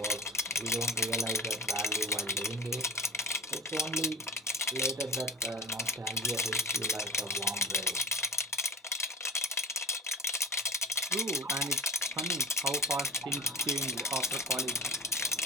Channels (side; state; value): both; normal; correlation 0.36